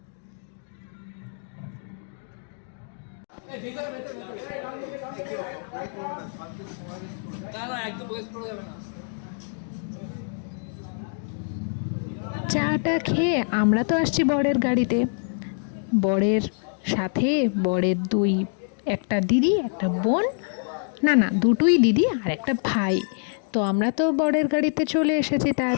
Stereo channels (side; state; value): right; silent; 61 dB below the other